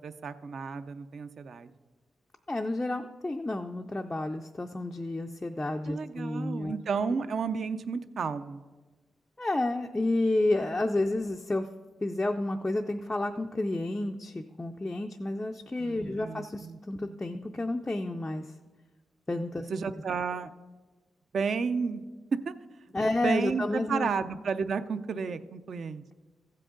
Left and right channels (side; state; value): both; normal; correlation 0.89